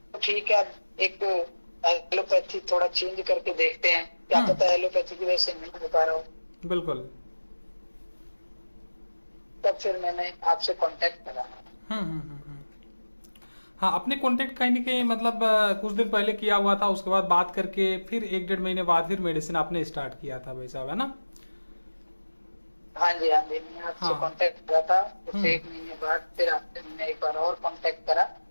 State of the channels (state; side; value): inverted; both; correlation -1.00